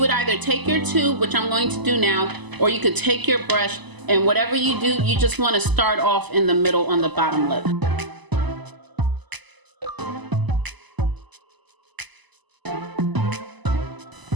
either take your tube, which I'm going to do now, or you could take your brush, and whatever you do, you just want to start off in the middle on the bottom lip.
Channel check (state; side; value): late; left; 1.0 ms